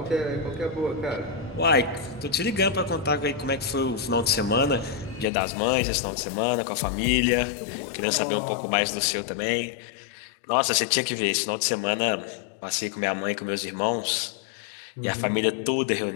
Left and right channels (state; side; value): drops out; right; at 5.2 s